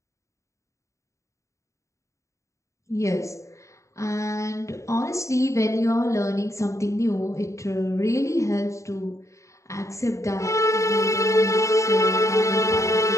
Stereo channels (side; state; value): right; late; 0.15 ms